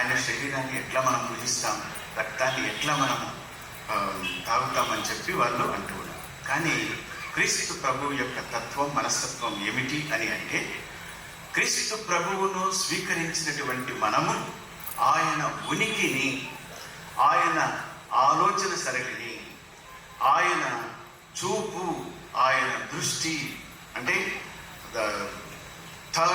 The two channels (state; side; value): identical; both; correlation 1.00